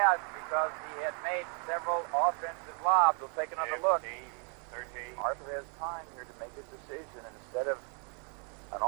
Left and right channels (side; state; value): left; quieter; 38.2 dB